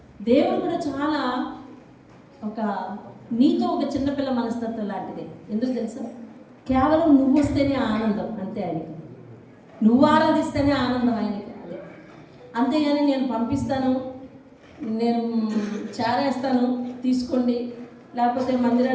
దేవుడు కూడా చాలా నీతో ఒక చిన్నపిల్ల మనస్తత్వం లాంటిదే. ఎందుకు తెలుసా? కేవలం నువ్వు వస్తేనే ఆనందం, అంతే ఆయనకి. నువ్వు ఆరాధిస్తేనే ఆనందం ఆయనకి, అదే. అంతేగాని నేను పంపిస్తాను, నేను చేరేస్తాను తీసుకోండి, లేకపోతే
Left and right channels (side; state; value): both; identical; correlation 1.00